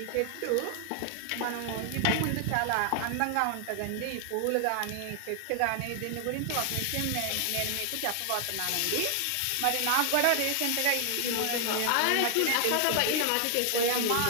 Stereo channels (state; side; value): different; both; correlation 0.00